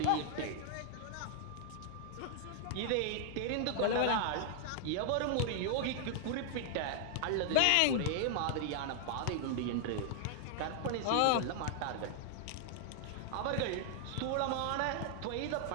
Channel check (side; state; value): both; different; correlation 0.00